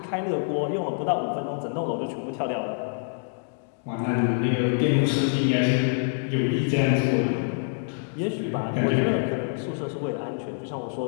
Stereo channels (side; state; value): right; silent; digital silence